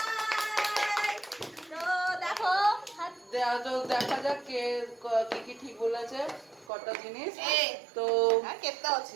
তো দেখো তো দেখা যাক কে কি কি ঠিক বলেছে কটা জিনিস। তো হ্যাঁ, কেটে আছে।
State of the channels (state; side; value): drops out; left; at 6.7 s